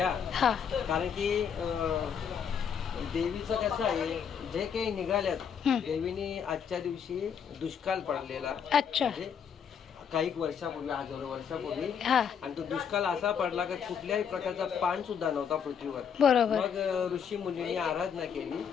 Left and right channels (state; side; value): quieter; right; 7.4 dB